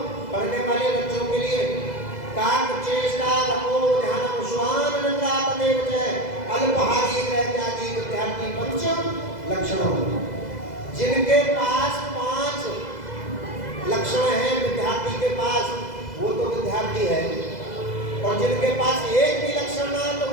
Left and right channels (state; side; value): late; right; 2.0 ms